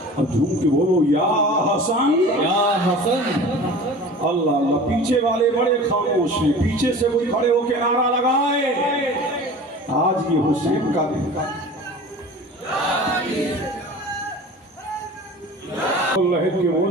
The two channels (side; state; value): both; normal; correlation 0.39